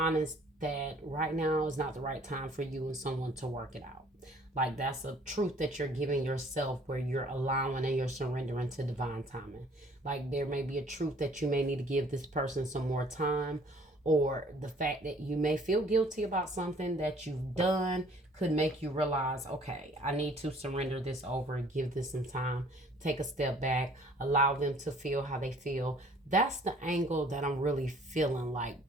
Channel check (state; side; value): normal; both; correlation 0.56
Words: that right now is not the right time for you and someone to work it out. Like that's a truth that you're giving yourself where you're allowing and you're surrendering to divine timing. Like there may be a truth that you may need to give this person some more time, or the fact that you may feel guilty about something that you've done could make you realize, okay, I need to surrender this over and give this some time, take a step back, allow them to feel how they feel. That's the angle that I'm really feeling like